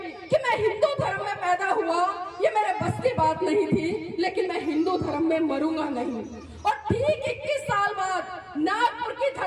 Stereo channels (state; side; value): identical; both; correlation 1.00